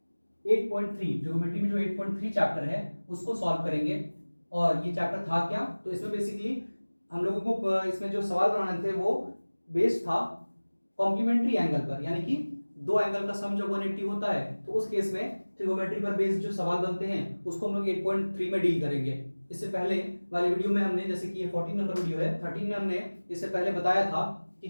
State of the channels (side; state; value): both; inverted; correlation -1.00